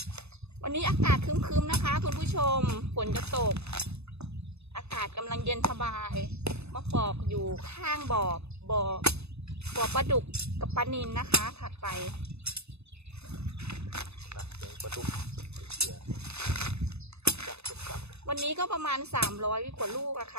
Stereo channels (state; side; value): late; left; 0.80 ms